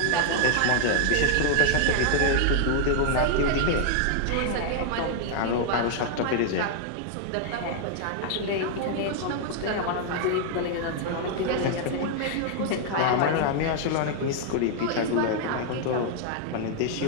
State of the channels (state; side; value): different; both; correlation 0.00